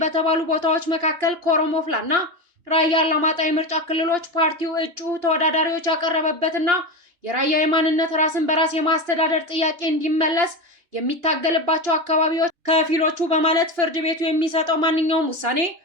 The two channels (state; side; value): late; left; 2.9 ms